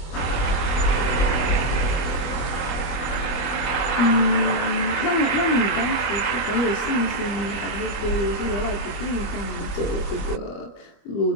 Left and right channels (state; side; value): late; right; 25 ms